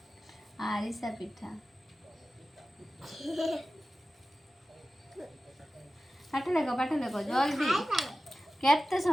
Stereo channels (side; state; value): both; normal; correlation 0.94